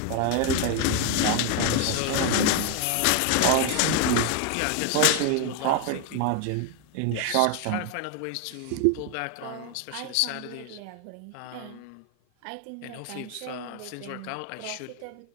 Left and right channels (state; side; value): different; both; correlation 0.01